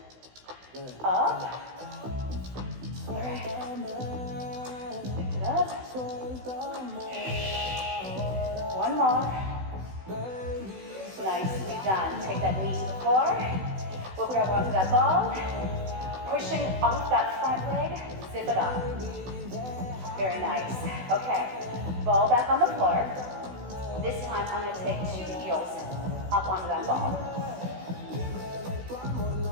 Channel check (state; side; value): late; left; 16 ms